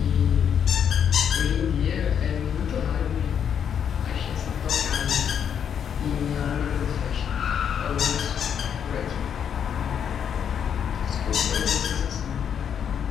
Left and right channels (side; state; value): right; quieter; 8.2 dB